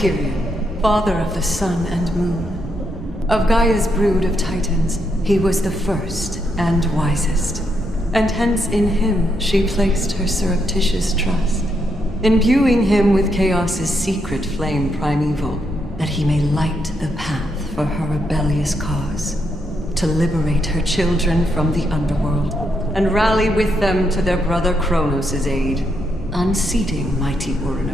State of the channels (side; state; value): both; normal; correlation 0.79